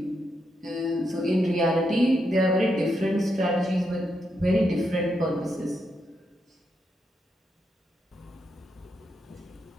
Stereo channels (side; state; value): both; normal; correlation 0.82